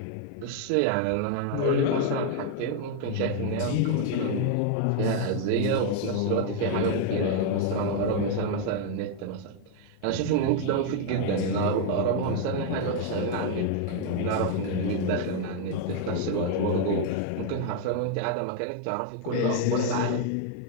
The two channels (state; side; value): different; both; correlation 0.00